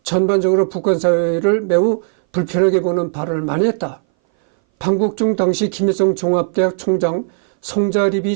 전반적으로 북한 사회를 매우 불편하게 보는 발언을 많이 했다. 방북 중 당시 김일성 종합대학 총장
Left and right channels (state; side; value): silent; left; 61 dB below the other